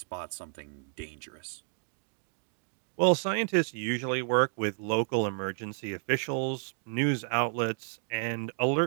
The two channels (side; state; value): left; silent; 57 dB below the other